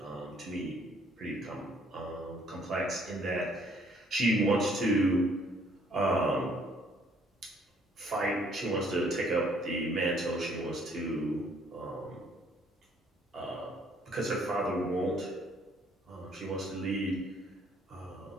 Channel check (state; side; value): normal; both; correlation 0.63